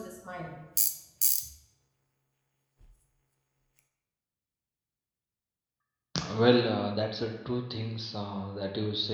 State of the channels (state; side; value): identical; both; correlation 1.00